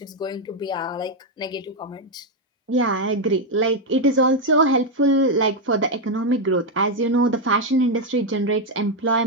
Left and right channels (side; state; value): both; normal; correlation 0.03